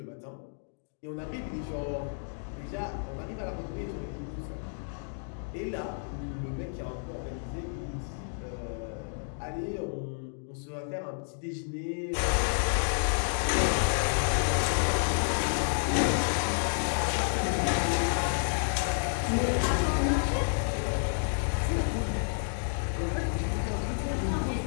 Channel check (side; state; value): right; silent; digital silence